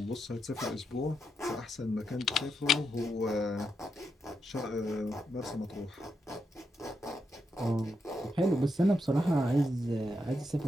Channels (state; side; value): normal; both; correlation 0.83